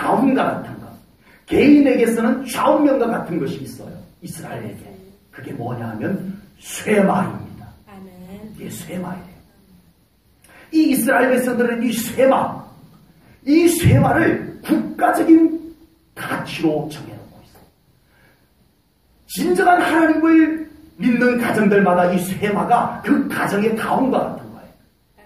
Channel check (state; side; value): identical; both; correlation 1.00